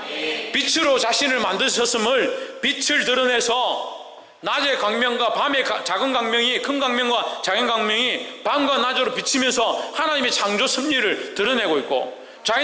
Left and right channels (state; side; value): identical; both; correlation 1.00